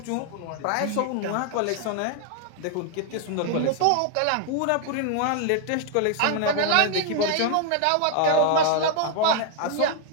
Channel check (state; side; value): different; both; correlation 0.00